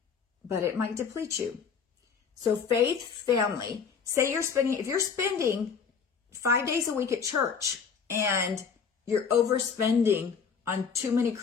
But it might deplete you. So faith, family, say if you're spending 5 days a week at church and you're overspending on too many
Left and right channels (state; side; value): quieter; right; 6.3 dB